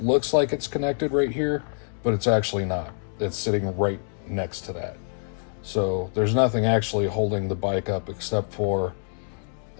looks like it's connected right here, but it's actually not. It's sitting right next to that. So there's nothing actually holding the bike up except for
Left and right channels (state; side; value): silent; right; 61 dB below the other